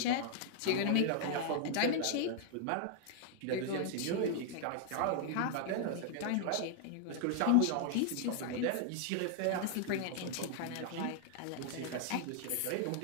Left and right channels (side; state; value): both; different; correlation -0.01